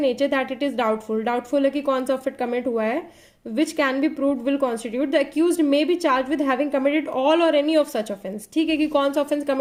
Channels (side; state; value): both; identical; correlation 1.00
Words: that it is doubtful, doubtful है कि कौन सा ऑफेंस कमिट हुआ है, which can be proved will constitute the accused may be charged with having committed all or any of such offense, ठीक है, कि कौन सा ऑफेंस